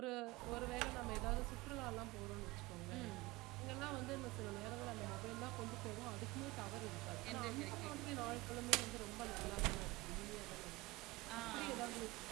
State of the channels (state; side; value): quieter; left; 22.1 dB